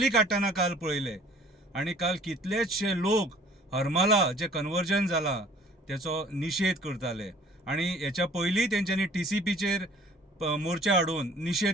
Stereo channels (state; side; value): normal; both; correlation 0.53